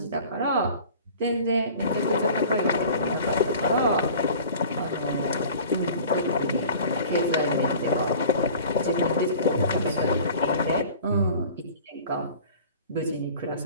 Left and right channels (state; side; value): inverted; both; correlation -0.44